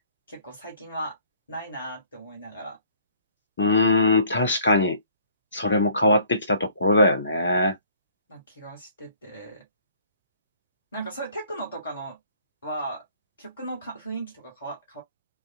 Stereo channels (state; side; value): inverted; both; correlation -0.57